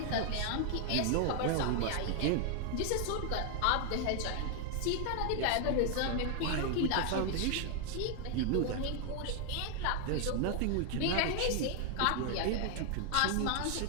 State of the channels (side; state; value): both; different; correlation 0.00